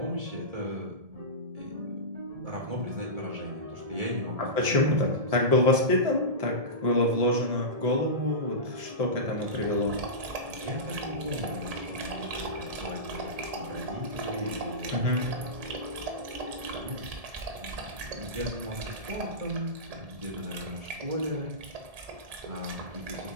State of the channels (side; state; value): left; late; 1.7 ms